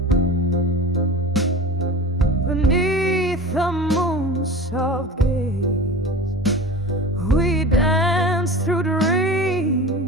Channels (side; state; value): both; normal; correlation 0.34